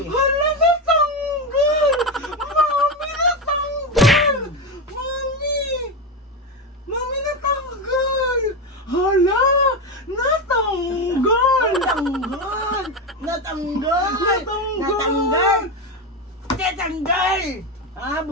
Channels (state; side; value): normal; both; correlation 0.15